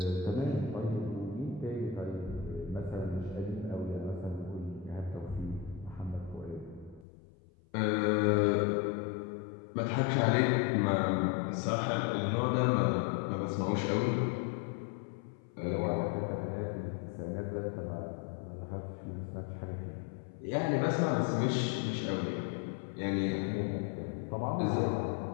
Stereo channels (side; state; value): right; drops out; at 7.1 s